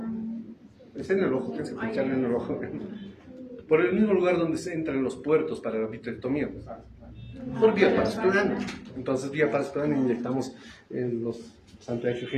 Es en el ojo, tienes que pincharle en el ojo. Por el mismo lugar donde se entran los puertos para la vitrectomía. Por vía parasplanal. Entonces, vía parasplanal inyectamos los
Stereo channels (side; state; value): both; identical; correlation 1.00